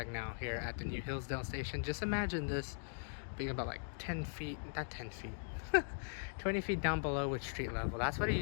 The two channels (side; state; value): right; silent; digital silence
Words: now here at the new Hillsdale Station. Just imagine this being about like 10 feet, not 10 feet, 20 feet down below with street level. That's what it